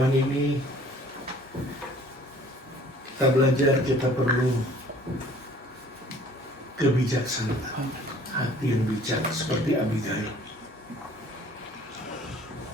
ini kita belajar, kita perlu kebijaksanaan, hati yang bijak seperti Abigail.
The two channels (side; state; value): both; normal; correlation 0.53